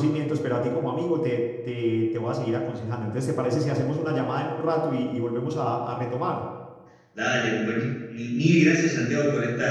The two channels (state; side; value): identical; both; correlation 1.00